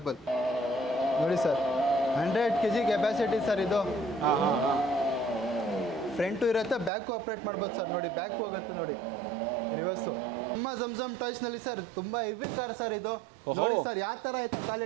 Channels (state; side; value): drops out; left; at 6.9 s